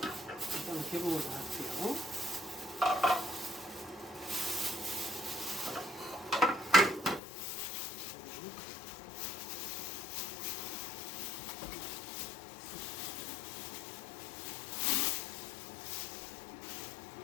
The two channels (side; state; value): right; drops out; at 7.2 s